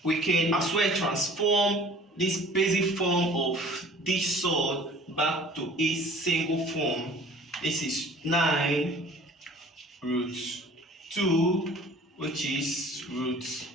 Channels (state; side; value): normal; both; correlation 0.49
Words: We can as well transform this basic form of this surd back to a single form. This is 9 root 2, which is root